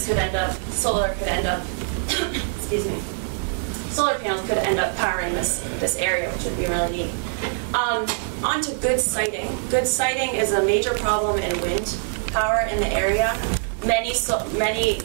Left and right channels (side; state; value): left; silent; 63 dB below the other